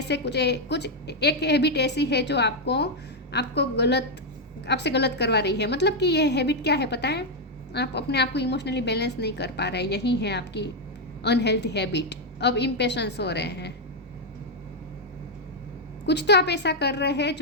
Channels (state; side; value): normal; both; correlation 0.01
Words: से कुछ एक habit ऐसी है जो आपको आपसे गलत करवा रही है। मतलब कि ये हैबिट क्या है पता है? आप अपने आप को इमोशनली बैलेंस नहीं कर पा रहे, यही है आपकी अनहेल्थी हैबिट। अब इम्पेशंस हो रहे हैं, कुछ तो आप ऐसा कर रहे हैं